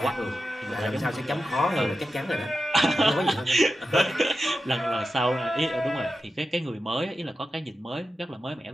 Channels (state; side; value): normal; both; correlation 0.91